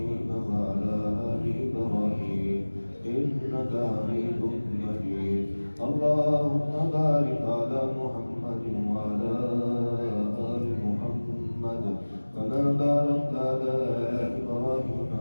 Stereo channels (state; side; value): inverted; both; correlation -1.00